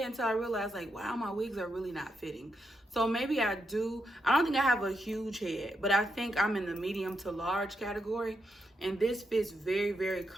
until I realized, like, wow, my wigs are really not fitting. So maybe I do. I don't think I have a huge head, but I think I'm in the medium to large category. And this fits very, very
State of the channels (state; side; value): normal; both; correlation 0.82